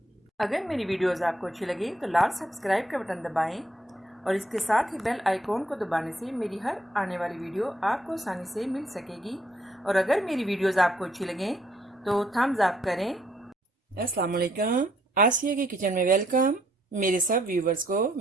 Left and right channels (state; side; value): normal; both; correlation 0.70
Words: अगर मेरी वीडियोस आपको अच्छी लगी तो लाल सब्सक्राइब का बटन दबाएं और इसके साथ ही बेल आइकॉन को दबाने से मेरी हर आने वाली वीडियो आपको आसानी से मिल सकेगी। और अगर मेरी वीडियोस आपको अच्छी लगें तो थम्स अप करें। अस्सलाम वालेकुम, आसिया की किचन में वेलकम। मेरे सब व्यूवर्स को